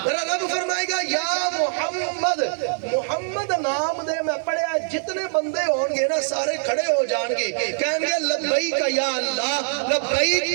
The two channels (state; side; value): silent; left; digital silence